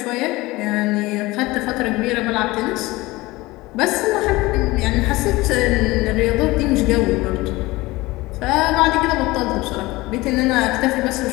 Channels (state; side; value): quieter; right; 20.6 dB